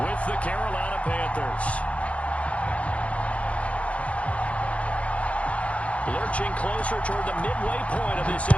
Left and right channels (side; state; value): right; late; 0.063 ms